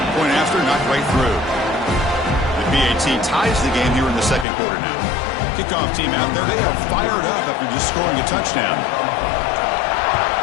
Point after, knocked right through. The BAT ties the game here in the 2nd quarter now. Kickoff team out there, they are fired up after just scoring a touchdown.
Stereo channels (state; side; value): drops out; right; at 4.5 s